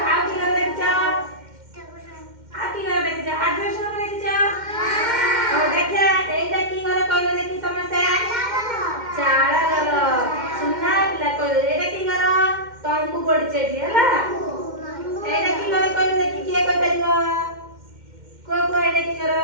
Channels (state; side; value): late; left; 2.1 ms